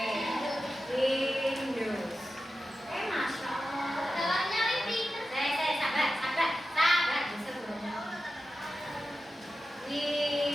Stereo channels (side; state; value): both; normal; correlation 0.92